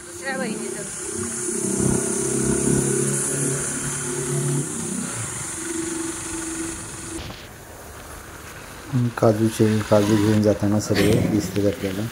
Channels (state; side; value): identical; both; correlation 1.00